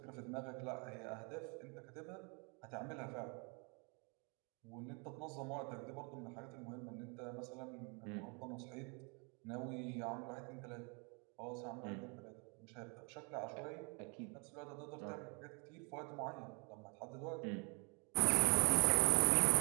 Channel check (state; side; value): quieter; left; 34.0 dB